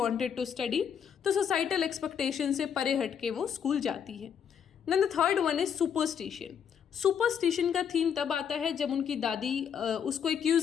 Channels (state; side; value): quieter; right; 7.9 dB